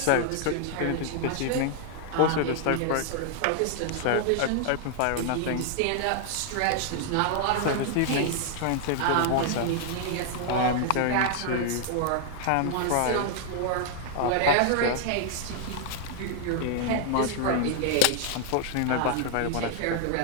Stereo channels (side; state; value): both; different; correlation -0.01